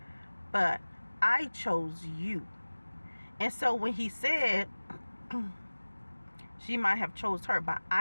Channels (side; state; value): both; inverted; correlation -1.00